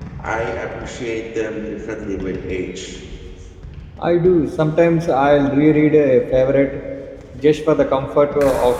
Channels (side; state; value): both; identical; correlation 1.00